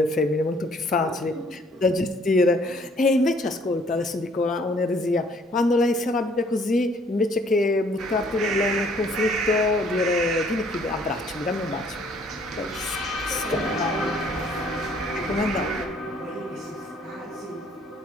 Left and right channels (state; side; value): normal; both; correlation 0.61